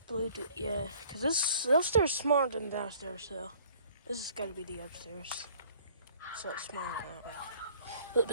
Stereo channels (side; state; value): both; inverted; correlation -0.54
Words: blue, yeah, because this upstairs is smaller than downstairs, so this has got to be the upstairs. So it's smaller, a little